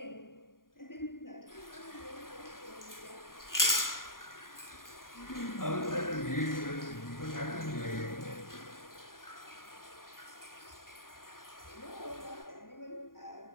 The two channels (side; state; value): right; late; 0.91 ms